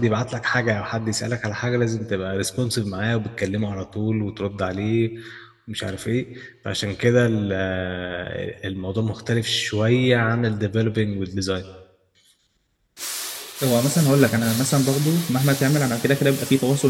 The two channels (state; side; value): identical; both; correlation 1.00